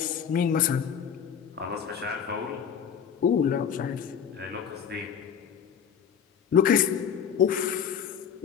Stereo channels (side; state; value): right; quieter; 7.8 dB